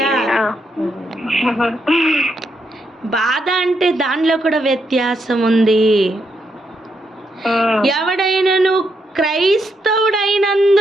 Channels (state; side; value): normal; both; correlation 0.79